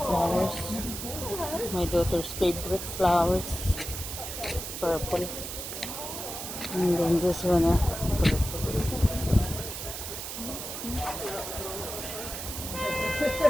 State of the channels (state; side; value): noise; right; hiss, 7 dB below the sound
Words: My daughter's favorite flowers. Purple. And then this one,